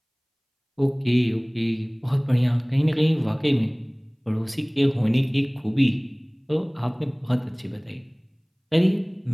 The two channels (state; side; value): identical; both; correlation 1.00